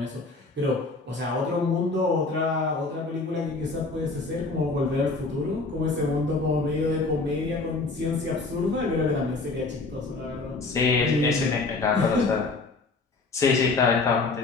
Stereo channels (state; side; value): quieter; right; 3.7 dB